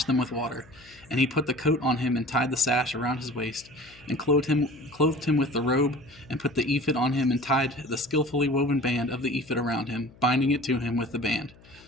them with water. And he put the coat on him and tied the sash around his waist, and clothed him with the robe, and put the ephod on him and tied the skillfully woven band of the ephod around him, binding it to him with the band.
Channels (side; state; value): left; noise; hum, 25 dB below the sound